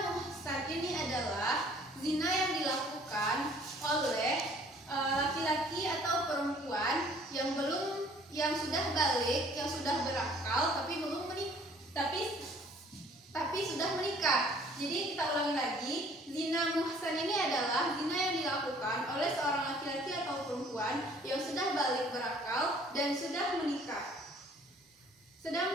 muhsan ini adalah zina yang dilakukan oleh laki-laki atau perempuan yang sudah balik, yang sudah berakal tapi belum menikah, tapi sudah menikah. Jadi kita ulangi lagi, zina muhsan ini adalah zina yang dilakukan oleh seorang laki-laki atau perempuan yang sudah balik berakal dan sudah menikah.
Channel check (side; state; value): both; normal; correlation 0.56